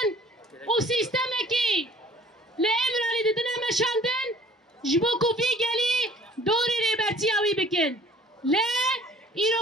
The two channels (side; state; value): both; normal; correlation 0.53